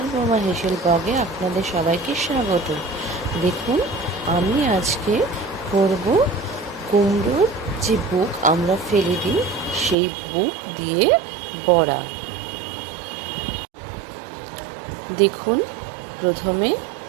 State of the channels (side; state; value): left; drops out; at 10.0 s